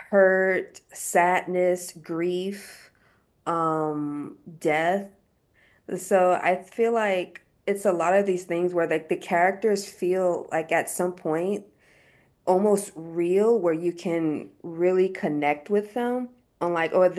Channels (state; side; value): identical; both; correlation 1.00